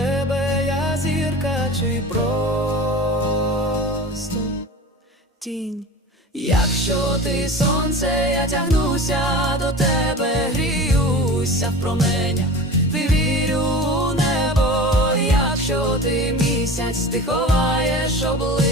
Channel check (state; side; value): normal; both; correlation 0.35